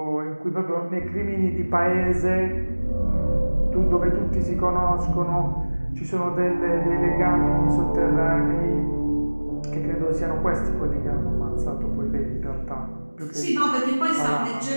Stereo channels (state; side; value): inverted; both; correlation -1.00